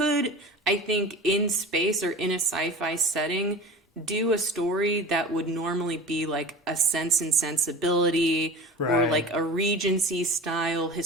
I think, in space or in a sci-fi setting, do a story that would normally be like a Sense and Sensibility or Right. like a Regency style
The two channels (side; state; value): both; normal; correlation 0.36